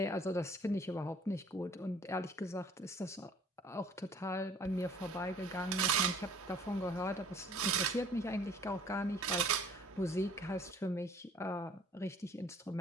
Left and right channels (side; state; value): both; normal; correlation 0.54